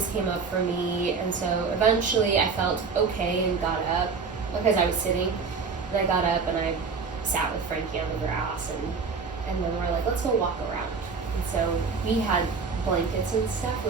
came up for me. And so eventually I felt okay and got up, because I was sitting, and I got up and I sat with Frankie on the grass, and then we're like, let's go walk around. And so we had blankets and stuff,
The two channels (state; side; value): quieter; left; 5.0 dB